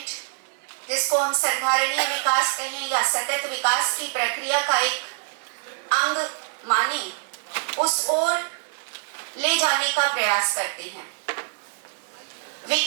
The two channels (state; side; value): silent; left; digital silence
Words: जिसको हम संधारणीय विकास कहें या सतत विकास की प्रक्रिया का एक अंग माने, उस ओर ले जाने का प्रयास करते हैं।